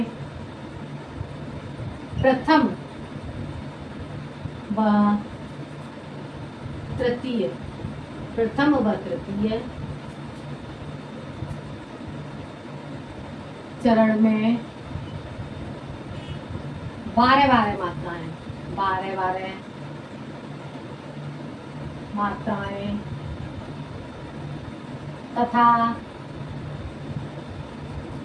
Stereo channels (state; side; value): identical; both; correlation 1.00